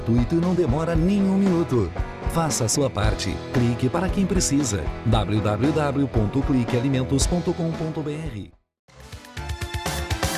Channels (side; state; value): both; identical; correlation 1.00